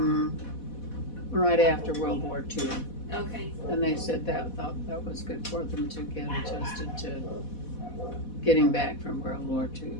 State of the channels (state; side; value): late; right; 4.1 ms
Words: right after World War II, Okay. and they said thought that was good for them to get adjusted to getting back from World War II.